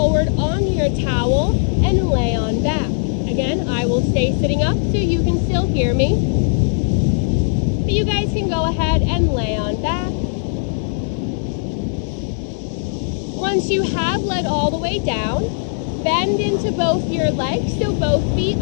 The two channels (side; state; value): right; silent; digital silence